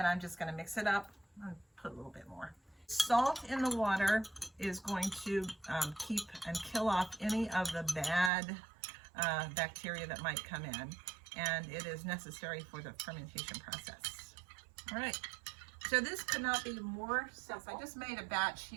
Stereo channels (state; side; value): drops out; left; at 8.3 s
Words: I'm just going to mix it up and put a little bit more. Salt in the water is going to keep and kill off any of the bad bacteria that might come in. And it is necessary for the fermentation process. All right. So this could not be more simple. I just made a batch